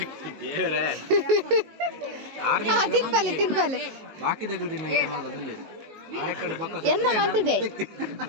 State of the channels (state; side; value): late; left; 19 ms